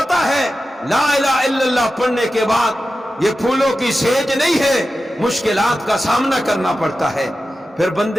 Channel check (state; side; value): normal; both; correlation 0.93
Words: ہے لا الہ الا اللہ پڑھنے کے بعد یہ پھولوں کی سیج نہیں ہے، مشکلات کا سامنا کرنا پڑتا ہے، پھر